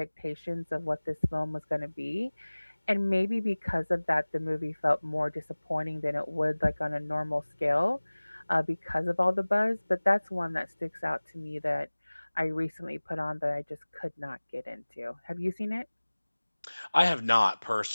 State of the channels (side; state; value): both; inverted; correlation -1.00